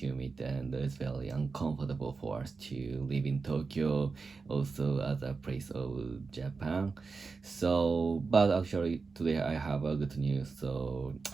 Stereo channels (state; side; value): quieter; left; 4.5 dB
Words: and it's very uncomfortable for us to live in Tokyo, also other place of Japan. So, but actually today I have a good news. So